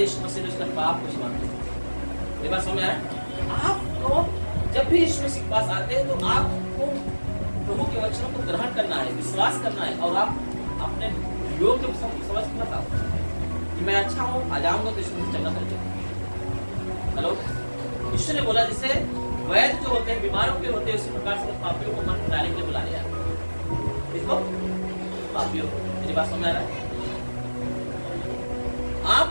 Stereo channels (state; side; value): inverted; both; correlation -1.00